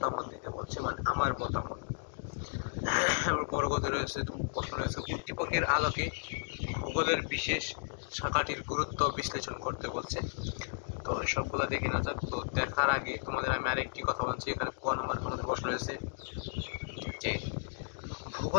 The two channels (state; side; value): silent; right; digital silence